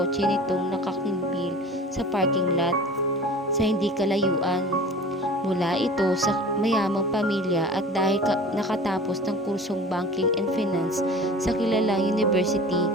nitong nakakimbil sa parking lot sa hindi kalayuan. Mula ito sa mayamang pamilya at dahil nakatapos ng kursong Banking and Finance sa kilalang university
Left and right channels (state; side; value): normal; both; correlation 0.40